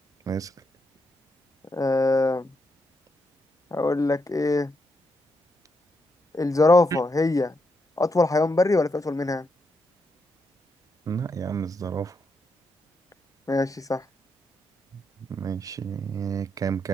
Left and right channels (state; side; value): normal; both; correlation 0.81